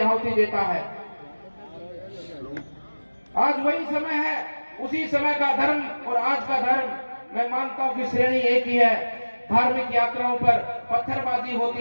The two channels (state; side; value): inverted; both; correlation -1.00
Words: आहुति देता है। आज वही समय है, उसी समय का धर्म और आज का धर्म मैं मानता हूं कि श्रेणी एक ही है। धार्मिक यात्राओं पर पत्थरबाजी